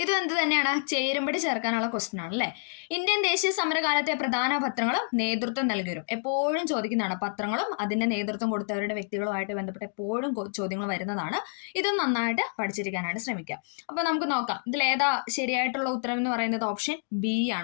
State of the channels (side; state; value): right; silent; digital silence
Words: ഇതും എന്ത് തന്നെയാണ്? ചേരുംപടി ചേർക്കാനുള്ള ക്വസ്റ്റ്യൻ ആണ് അല്ലെ. ഇന്ത്യൻ ദേശീയ സമരകാലത്തെ പ്രധാന പത്രങ്ങളും നേതൃത്വം നൽകിവരും. എപ്പോഴും ചോദിക്കുന്നതാണ്. പത്രങ്ങളും അതിന്റെ നേതൃത്വം കൊടുത്തവരുടെ വ്യക്തികളുമായിട്ട് ബന്ധപ്പെട്ട് എപ്പോഴും ചോദ്യങ്ങൾ വരുന്നതാണ്. ഇതും നന്നായിട്ട് പഠിച്ചിരിക്കാനായിട്ട് ശ്രമിക്കാം. അപ്പൊ നമുക്ക് നോക്കാം ഇതിൽ ഏതാ ശരിയായിട്ടുള്ള ഉത്തരം എന്ന് പറയുന്നത്? ഓപ്ഷൻ ബി